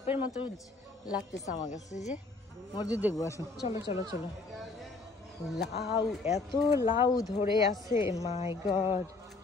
মতো লাগতেছে আমার কাছে। যে মসজিদ দেখবো, আসো। চলো চলো চলো। লাউ, এত লাউ ধরে আছে, মাই গড।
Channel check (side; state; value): right; quieter; 3.6 dB